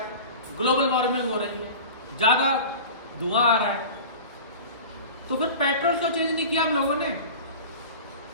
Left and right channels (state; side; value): inverted; both; correlation -0.36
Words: ग्लोबल वार्मिंग हो रही है, ज्यादा धुआं आ रहा है। तो फिर पेट्रोल क्यों चेंज नहीं किया हम लोगों ने?